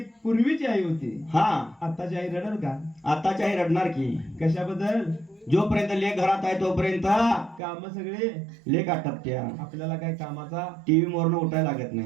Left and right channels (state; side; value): drops out; left; at 7.6 s